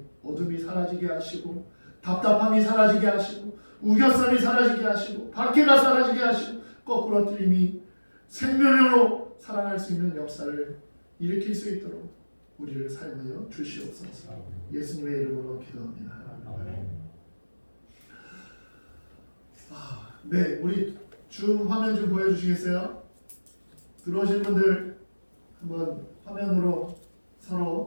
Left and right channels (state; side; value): inverted; both; correlation -1.00